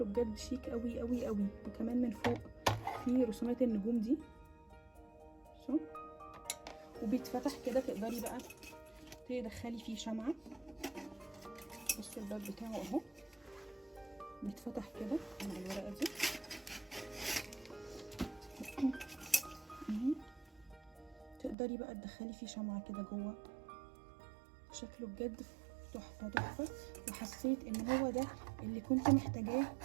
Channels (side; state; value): left; drops out; at 21.6 s